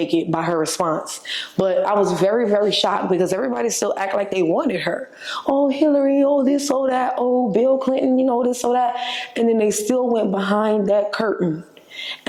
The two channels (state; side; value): identical; both; correlation 1.00